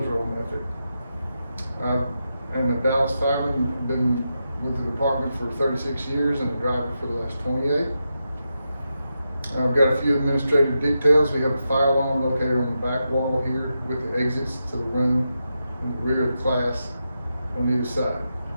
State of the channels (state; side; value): inverted; both; correlation -0.87